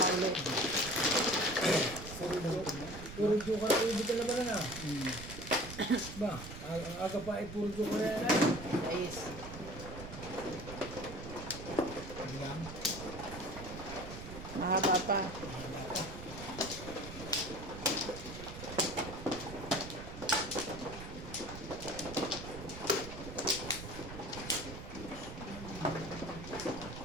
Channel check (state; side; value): noise; right; rumble, 11 dB below the sound